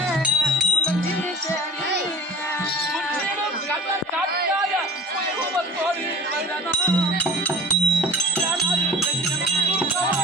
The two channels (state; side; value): normal; both; correlation 0.40